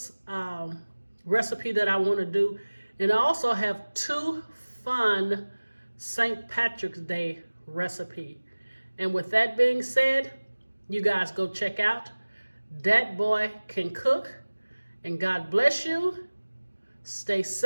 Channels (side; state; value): both; inverted; correlation -1.00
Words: recipe that I want to do. And I also have 2 fun St. Patrick's Day recipe. And with that being said, you guys go check out Dat Boy Can Cook. And God bless you. Stay